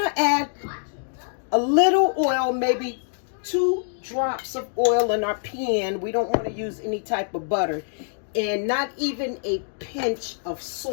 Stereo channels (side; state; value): right; silent; digital silence